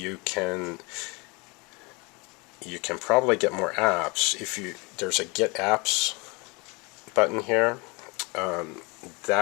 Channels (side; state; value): right; quieter; 28.5 dB